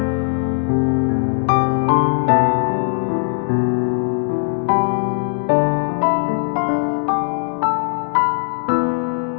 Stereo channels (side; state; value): right; silent; 67 dB below the other